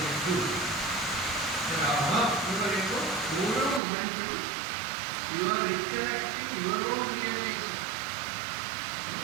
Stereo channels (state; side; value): drops out; left; at 3.8 s